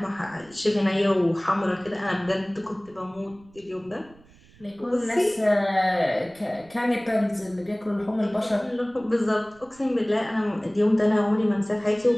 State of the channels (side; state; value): right; noise; rumble, 27 dB below the sound